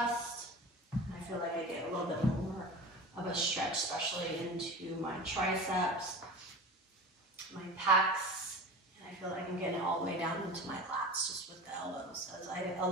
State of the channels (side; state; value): both; normal; correlation 0.33